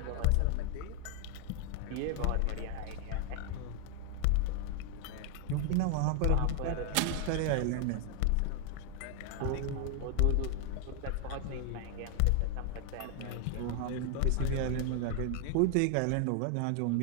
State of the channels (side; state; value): both; different; correlation 0.00